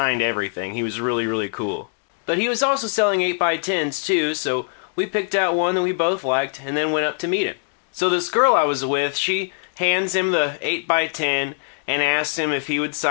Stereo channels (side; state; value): right; silent; digital silence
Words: everything. He was really, really cool. But he was also selling 8x10s too, so we picked out one that we both liked and then went up to meet him. So this girl I was with, she hands him the 8x10 and asks him if he would